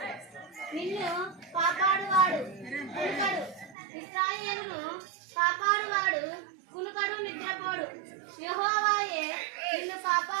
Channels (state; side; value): drops out; left; at 3.8 s